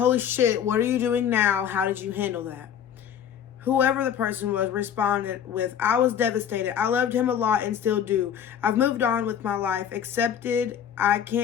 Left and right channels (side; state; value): right; quieter; 8.9 dB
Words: shit, what are you doing now? How did you handle that?" Whoever the person was responded with, "I was devastated. I loved him a lot and still do. I've moved on with my life, accepted I